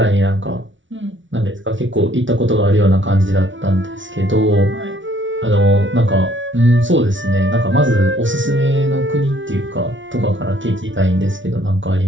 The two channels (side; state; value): left; late; 0.56 ms